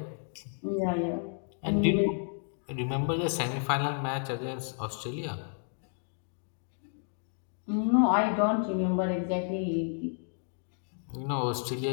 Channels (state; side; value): silent; right; 57 dB below the other